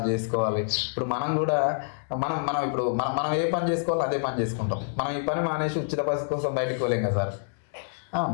చేసుకోవాలి. ఇప్పుడు మనం కూడా మనం ఇప్పుడు మనం ఏ పని చేసుకోవాలో అదే పని చేసుకుంటాం. మనం ఈ పని మానేసి ఉచిత బస్సు కోసం బయటికి పోలేం కదా సార్.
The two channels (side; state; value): right; silent; digital silence